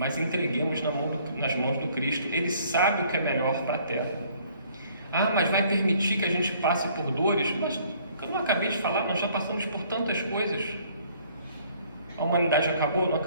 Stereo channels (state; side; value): inverted; both; correlation -0.59